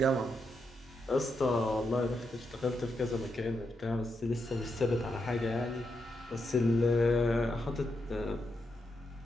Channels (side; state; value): both; normal; correlation 0.83